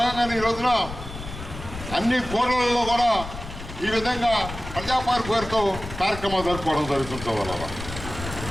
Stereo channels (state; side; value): noise; left; rumble, 10 dB below the sound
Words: ఈ రోజున అన్ని కోర్టులలో కూడా ఈ విధంగా ప్రజాపార్ పేరుతో కార్యక్రమాలు జరుపుకోవడం జరుగుతుంది. వల్ల